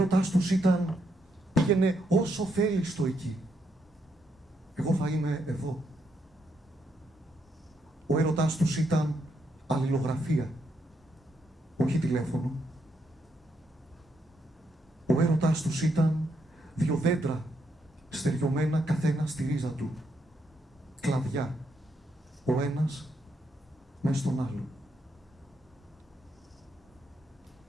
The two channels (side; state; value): both; normal; correlation 0.78